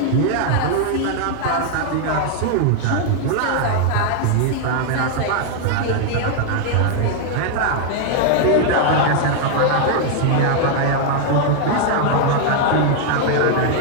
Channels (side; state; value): both; different; correlation 0.00